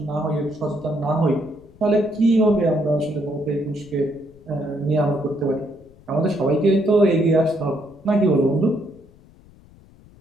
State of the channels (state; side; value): noise; left; rumble, 25 dB below the sound